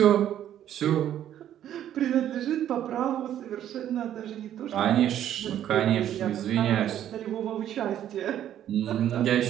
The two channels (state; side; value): quieter; left; 11.1 dB